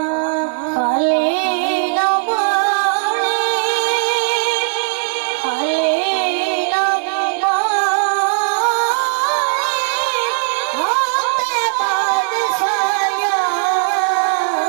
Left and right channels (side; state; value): left; silent; 56 dB below the other